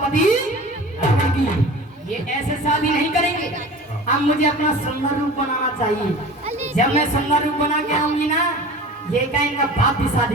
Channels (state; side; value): normal; both; correlation 0.38